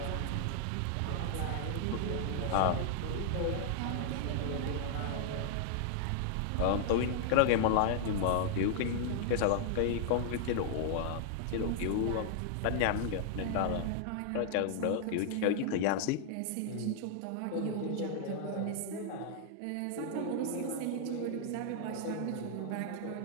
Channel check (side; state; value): both; different; correlation -0.01